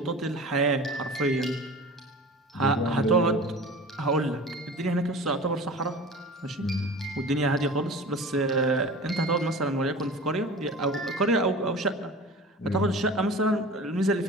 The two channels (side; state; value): both; normal; correlation 0.38